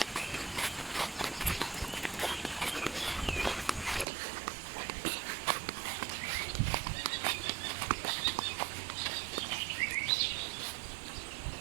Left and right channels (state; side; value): drops out; left; at 4.0 s